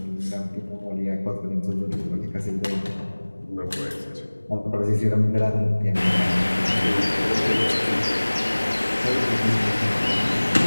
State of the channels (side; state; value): both; inverted; correlation -1.00